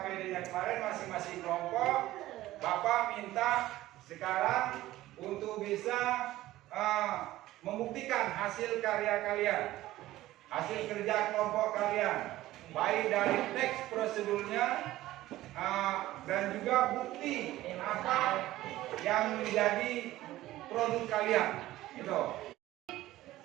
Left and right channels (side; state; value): left; quieter; 15.8 dB